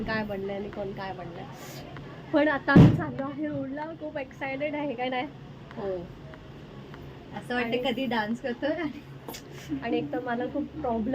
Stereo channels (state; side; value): identical; both; correlation 1.00